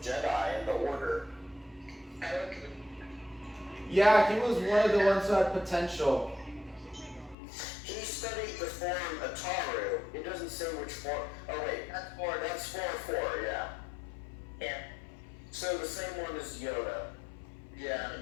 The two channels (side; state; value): right; drops out; at 7.4 s